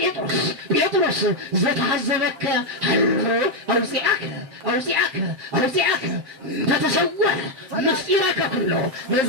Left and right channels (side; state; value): left; late; 7.5 ms